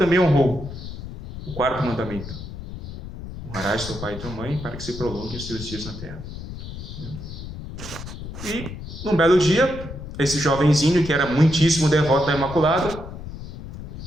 honrou, o 4º mandamento: honrarás teu pai e tua mãe para que se prolonguem os teus dias na terra. E, num belo dia, esse jovenzinho, que era muitíssimo devoto da Imaculada,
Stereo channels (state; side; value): noise; left; rumble, 10 dB below the sound